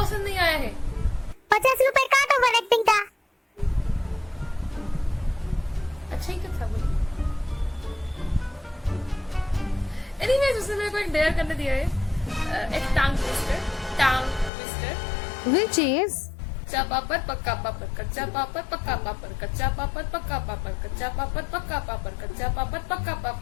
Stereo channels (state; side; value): drops out; right; at 14.5 s